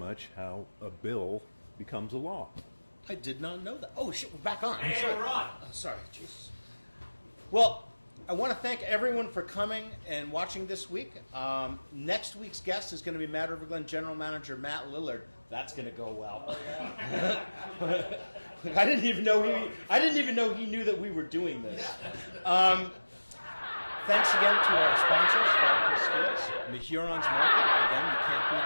how a bill becomes a law. I did not know that. Oh, shit, we're back on. Hey, Sorry. we're on. Oh, sorry, Jesus. Well, I want to thank everyone for coming and watching this week. Next week's guest is going to be Mad River Glen General Manager Matt Lillard. That's going to go well. Oh, yeah. I didn't even know he knew that we were doing this. Thanks again to our sponsors, Falcon Skis, the Hurons Market. Again, you can't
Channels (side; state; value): both; inverted; correlation -1.00